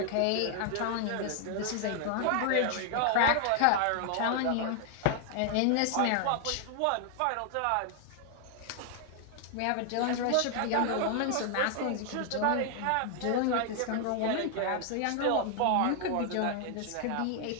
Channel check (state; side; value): different; both; correlation 0.00